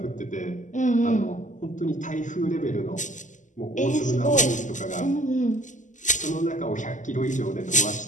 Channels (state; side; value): late; right; 0.37 ms